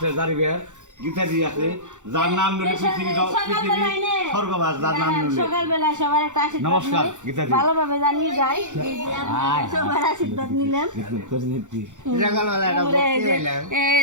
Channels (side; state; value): left; late; 0.85 ms